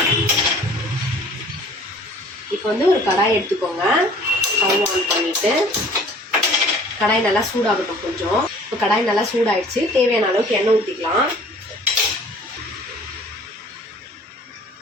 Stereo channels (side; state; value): both; normal; correlation 0.50